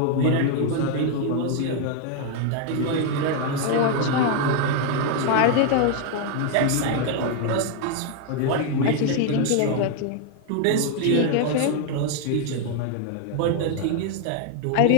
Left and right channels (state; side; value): different; both; correlation 0.01